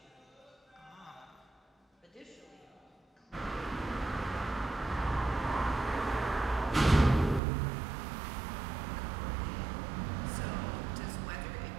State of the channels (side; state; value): left; drops out; at 7.4 s